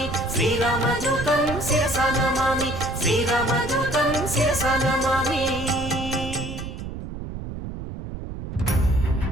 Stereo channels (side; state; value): right; noise; rumble, 8 dB below the sound